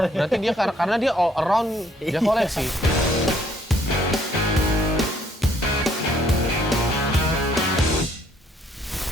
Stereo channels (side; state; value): both; normal; correlation 0.66